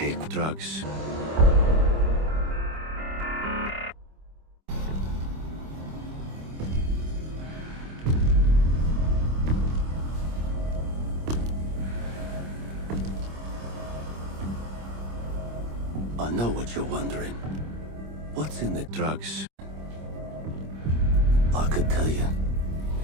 Drugs. I know what you're wondering. What's in the Drugs. I could tell you,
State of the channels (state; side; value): late; left; 25 ms